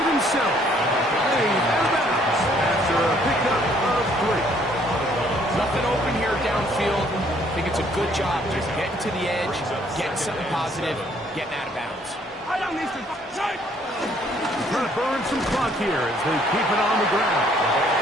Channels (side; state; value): both; normal; correlation 0.64